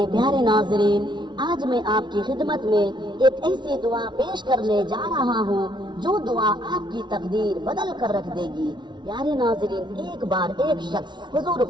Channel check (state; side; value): late; left; 0.22 ms